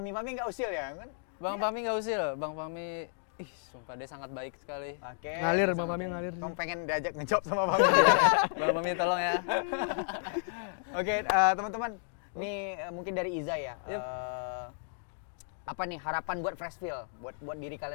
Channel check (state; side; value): silent; right; digital silence